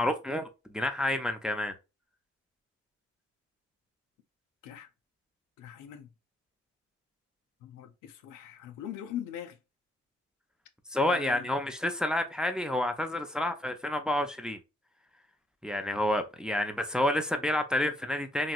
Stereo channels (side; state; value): both; normal; correlation 0.73